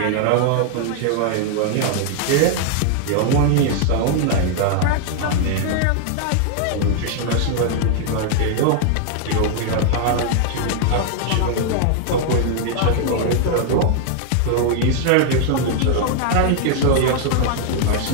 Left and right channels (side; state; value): both; different; correlation 0.00